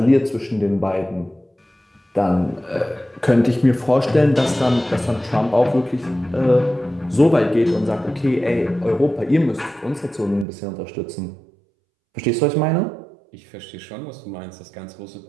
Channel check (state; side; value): drops out; left; at 10.5 s